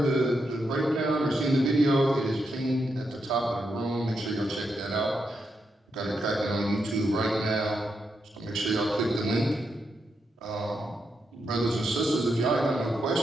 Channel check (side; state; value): both; normal; correlation 0.83